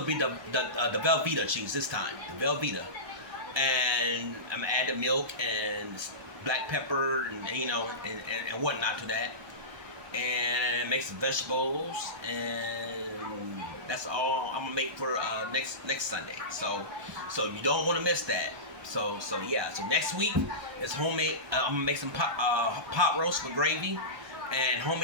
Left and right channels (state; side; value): late; left; 1.3 ms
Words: be the Velveeta cheese this time, the Velveeta. And I'm gonna add the milk and black pepper and and whatnot to that, and make some vegetables, and that's all I'm gonna make for next Sunday. So you don't want to miss that. So yeah. So next week is homemade. I'm gonna make some pot roast with gravy and